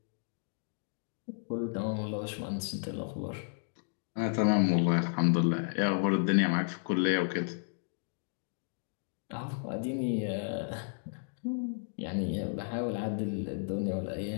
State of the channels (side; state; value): right; silent; digital silence